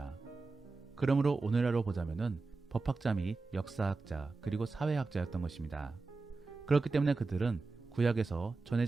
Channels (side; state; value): left; quieter; 3.9 dB